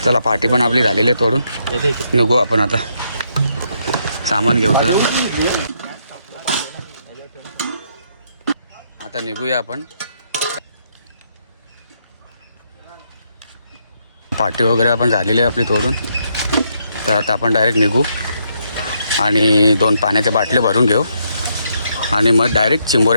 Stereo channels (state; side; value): inverted; both; correlation -0.75